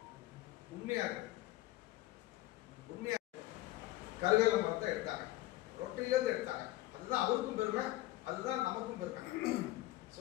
உண்மையா கருவேல மரத்தை எடுத்தாங்க, ரொட்டிலேருந்து எடுத்தாங்க. அதுதான் அவருக்கும் பெருமை, அதுதான் நமக்கும் பெருமை.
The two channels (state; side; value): quieter; right; 16.6 dB